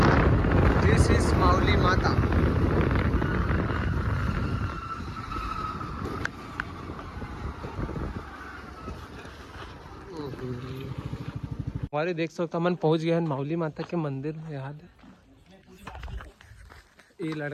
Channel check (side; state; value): both; identical; correlation 1.00